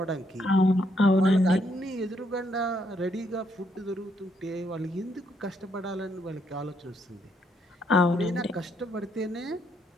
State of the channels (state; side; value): normal; both; correlation 0.74